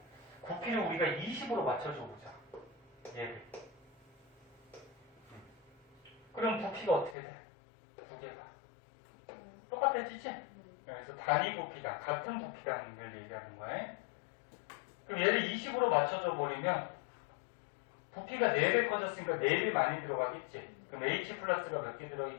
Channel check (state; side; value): drops out; right; at 7.2 s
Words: 부피를 우리가 20으로 맞춰줘 보자. 얘를. 그럼 부피가 어떻게 돼? 2개가. 똑같아지지? 그래서 단위 부피다. 같은 부피라는 걸 얘기하는 거야. 그럼 얘를 20으로 맞춰줘 버리면 부피가 4배 커졌으니까 4배 많이 들어가겠지? 그럼 H 플러스가 몇 개